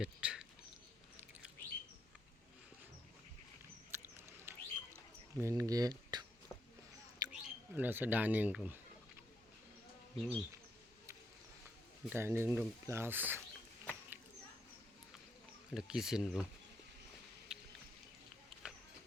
main gate. এটা হচ্ছে dining room. Dining room plus এটা কিচেন রুম।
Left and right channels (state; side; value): normal; both; correlation 0.78